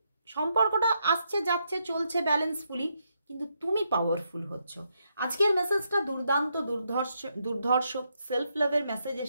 সম্পর্কটা আসছে যাচ্ছে চলছে ব্যালেন্সফুলি, কিন্তু তুমি পাওয়ারফুল হচ্ছ। আজকের মেসেজটা দুর্দান্ত, দুর্ধর্ষ সেলফ লাভের মেসেজ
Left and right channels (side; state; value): both; inverted; correlation -0.79